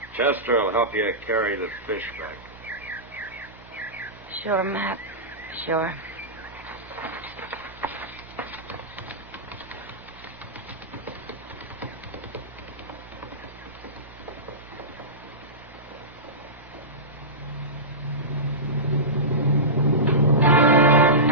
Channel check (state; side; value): normal; both; correlation -0.18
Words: Chester will help you carry the fish back. Sure, Matt. Sure.